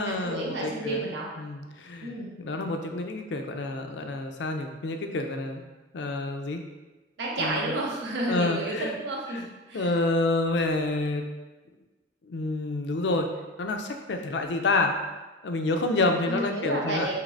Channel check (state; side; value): normal; both; correlation 0.25